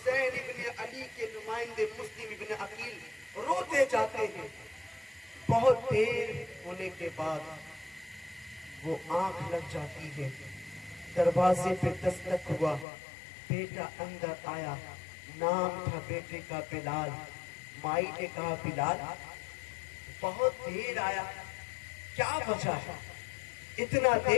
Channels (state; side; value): drops out; right; at 12.9 s